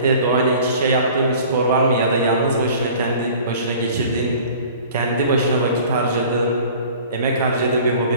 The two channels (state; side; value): inverted; both; correlation -0.46